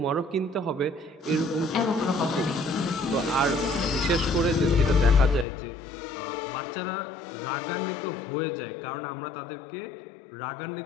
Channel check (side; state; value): right; drops out; at 5.5 s